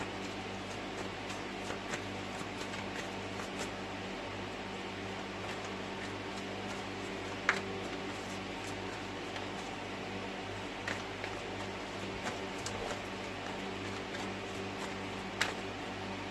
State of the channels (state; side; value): identical; both; correlation 1.00